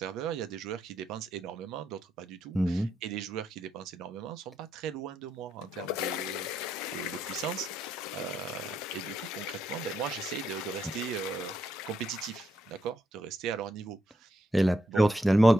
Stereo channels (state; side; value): normal; both; correlation 0.79